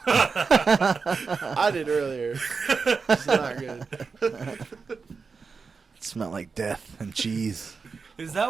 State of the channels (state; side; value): quieter; left; 4.9 dB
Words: I did earlier. It's not good. It smelled like death and cheese. Is